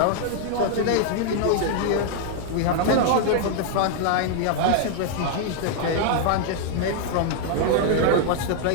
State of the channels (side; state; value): both; different; correlation 0.00